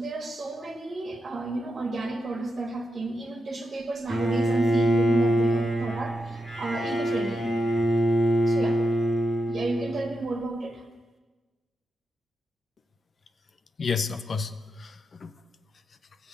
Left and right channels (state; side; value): normal; both; correlation 0.87